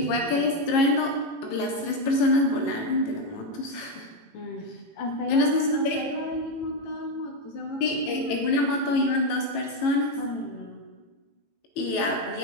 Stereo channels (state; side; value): late; right; 18 ms